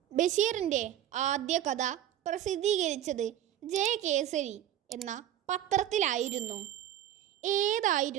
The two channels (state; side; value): quieter; left; 11.7 dB